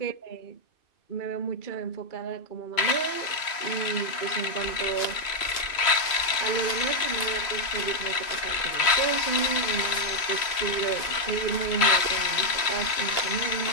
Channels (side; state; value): right; late; 3.0 ms